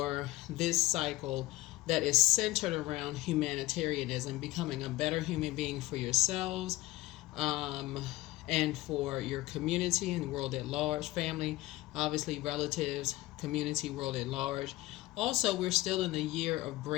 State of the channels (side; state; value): right; quieter; 18.5 dB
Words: this cycle that is centered around humanitarianism, becoming a better human being for yourselves, and for your community and the world at large, family, obviously relatives, community, world at large. Also, we're still in the year of